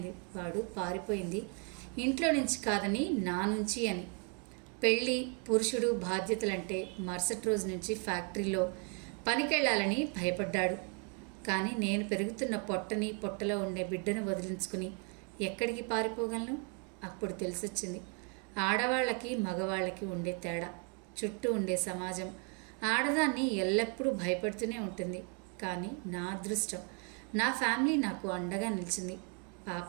వాడు పారిపోయింది ఇంట్లో నుంచి కాదని నా నుంచి అని. పెళ్ళి, పురుషుడు, బాధ్యతలంటే మరుసటి రోజు నుంచి ఫ్యాక్టరీలో పనికెళ్ళాలని భయపడ్డాడు. కానీ నేను పెరుగుతున్న పొట్టని, పొట్టలో ఉండే బిడ్డను వదిలించుకుని ఎక్కడికి పారిపోగలను? అప్పుడు తెలిసొచ్చింది ఆడవాళ్ళకి, మగవాళ్ళకి ఉండే తేడా. చుట్టూ ఉండే సమాజం ఆడదాన్ని ఎల్లప్పుడూ భయపడుతూనే ఉంటుంది. కానీ నా అదృష్టం, నా ఫ్యామిలీ నాకు అండగా నిలిచింది.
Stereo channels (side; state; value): left; quieter; 38.4 dB